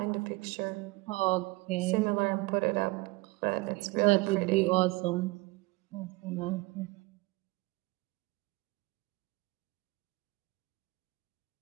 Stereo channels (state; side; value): quieter; left; 23.1 dB